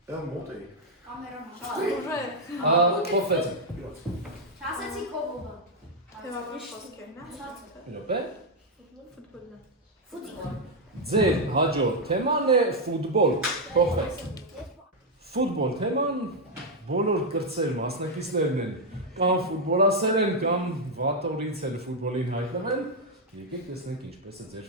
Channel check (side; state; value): both; normal; correlation 0.00